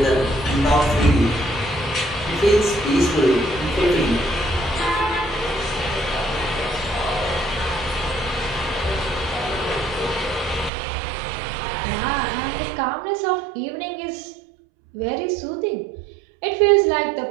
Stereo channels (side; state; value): left; drops out; at 10.7 s